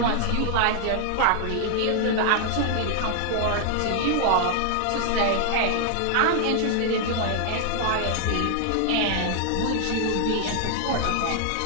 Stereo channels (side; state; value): both; different; correlation 0.00